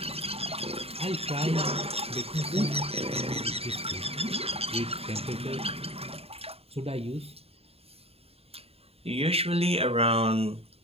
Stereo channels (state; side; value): late; left; 0.29 ms